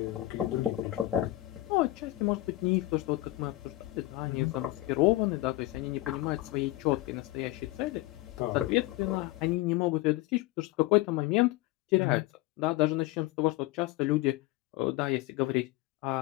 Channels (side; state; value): right; quieter; 17.8 dB